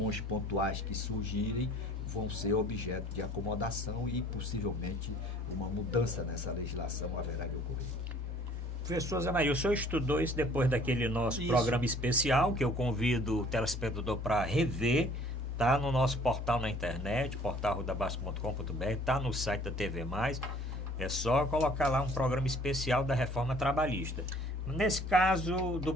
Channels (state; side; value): normal; both; correlation 0.54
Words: pontuais que surgirem vão ser objeto de acomodação e possivelmente uma mudança nessa legislação haverá de ocorrer. Professor Zé Maria, o senhor estudou isso depois daquele nosso programa especial, que eu convido o telespectador para rever. Está no nosso portal na internet, portalrudabasco.com.br, está no site da TV+. É só colocar lá um programa especial da reforma trabalhista. Nesse caso do